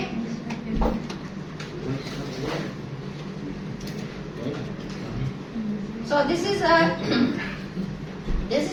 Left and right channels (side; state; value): both; identical; correlation 1.00